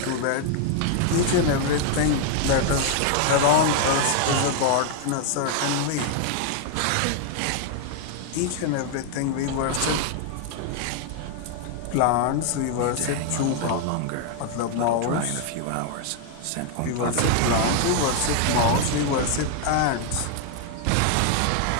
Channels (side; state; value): both; different; correlation 0.00